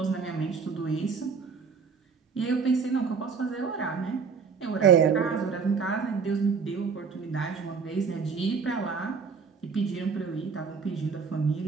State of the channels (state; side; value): quieter; left; 5.6 dB